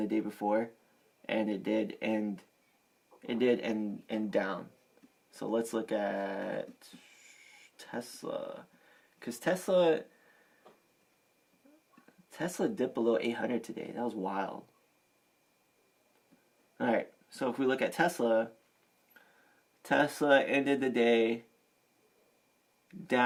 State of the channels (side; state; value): both; identical; correlation 1.00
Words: day before, and it did end down. So let's look at Tesla, because Tesla dipped below 800 today. That was wild. All right, so if we look at Tesla ended the day